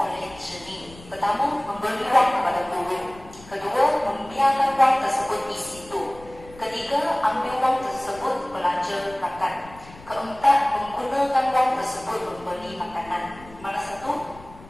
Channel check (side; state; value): left; noise; rumble, 20 dB below the sound